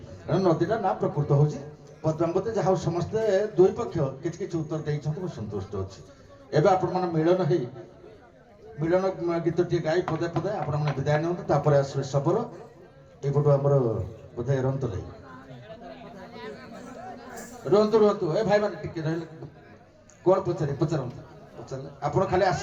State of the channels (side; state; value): both; identical; correlation 1.00